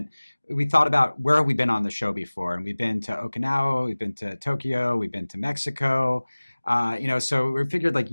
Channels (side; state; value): both; inverted; correlation -1.00